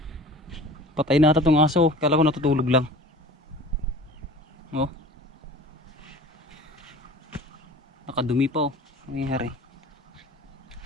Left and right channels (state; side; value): normal; both; correlation 0.41